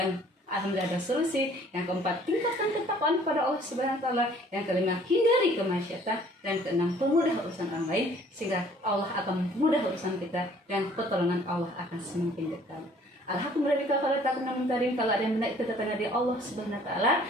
alhamdulillah ada solusi. Yang keempat, tingkatkan ketakwaan kepada Allah Subhanahu wa taala. Yang kelima, hindari kemaksiatan. Dan keenam, pemudah urusan orang lain, sehingga Allah akan mempermudah urusan kita dan pertolongan Allah akan semakin dekat. Alhamdulillah, kalau tak pernah mentarim, kalau ada yang benar itu datangnya dari Allah Subhanahu wa taala.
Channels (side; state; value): both; normal; correlation 0.56